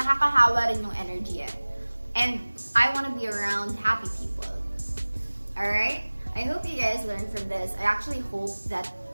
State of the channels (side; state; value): both; inverted; correlation -1.00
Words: rin yung energy eh. And I want to be around happy people. Alright? I hope you guys learned from this. I actually hope that